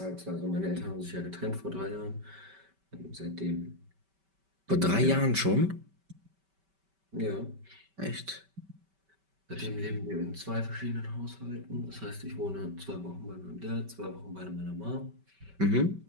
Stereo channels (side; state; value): left; late; 5.2 ms